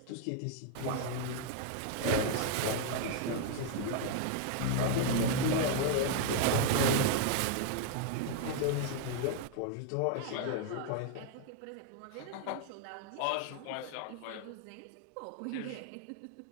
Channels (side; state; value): both; different; correlation 0.00